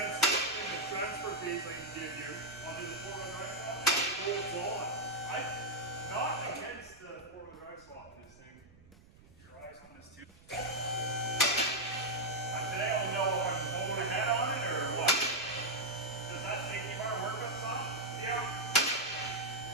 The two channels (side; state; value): right; noise; rumble, 24 dB below the sound